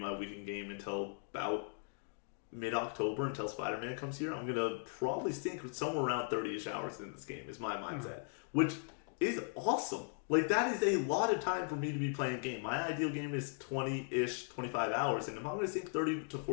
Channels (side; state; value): right; silent; 52 dB below the other